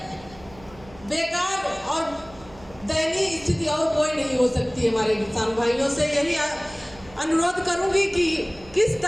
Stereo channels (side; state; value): right; noise; hum, 22 dB below the sound